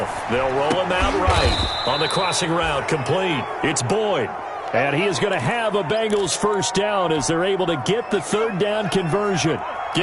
They'll roll him out right. On the crossing route, complete. It's Boyd. And he is going to have a Bengals 1st down as they're able to get the 3rd down conversion.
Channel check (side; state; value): both; identical; correlation 1.00